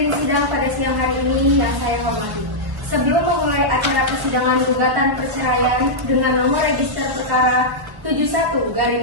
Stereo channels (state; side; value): late; left; 1.1 ms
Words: sidang pada siang hari ini yang saya hormati. Sebelum memulai acara persidangan gugatan perceraian dengan nomor register perkara